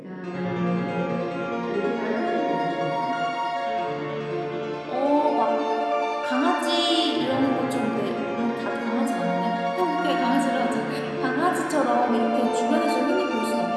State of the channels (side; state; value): both; identical; correlation 1.00